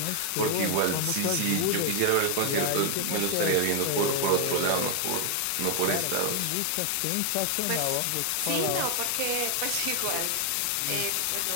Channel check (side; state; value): both; different; correlation 0.00